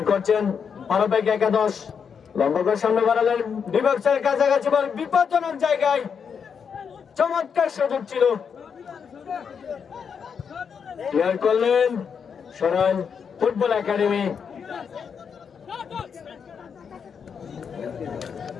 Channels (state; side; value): quieter; right; 6.7 dB